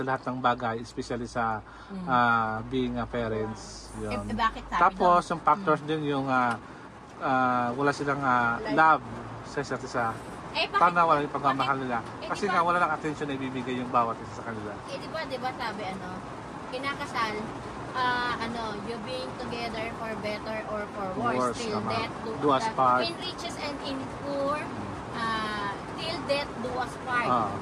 lahat ng bagay, especially sa being parents. Yun. Bakit sabi Tapos yung factors din yung wala silang love sa isa't isa. Paano wala yung pagmamahal nila? Kasi nga wala lang attention na ibibigay yung bawat isa sa kanila. Di ba sabi kinakasal, you being together for better or for worse, till death do us part. In riches and in poor, till death do us part.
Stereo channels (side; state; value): both; identical; correlation 1.00